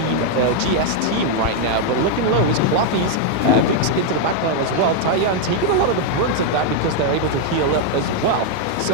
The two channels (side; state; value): both; different; correlation 0.00